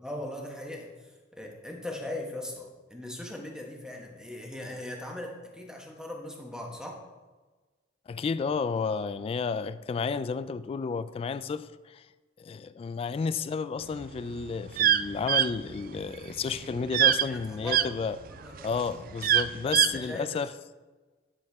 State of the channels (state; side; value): normal; both; correlation 0.11